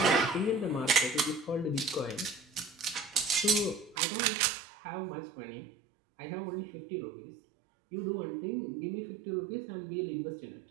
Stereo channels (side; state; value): left; drops out; at 4.0 s